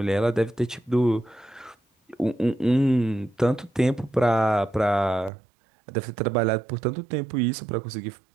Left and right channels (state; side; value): drops out; left; at 5.3 s